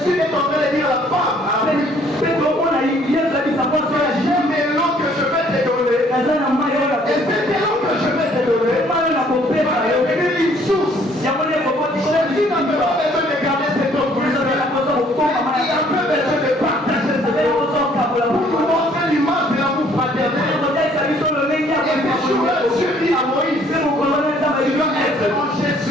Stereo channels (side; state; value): both; normal; correlation 0.61